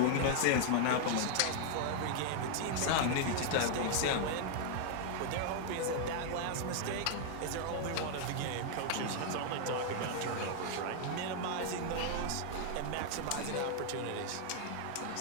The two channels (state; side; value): different; both; correlation 0.00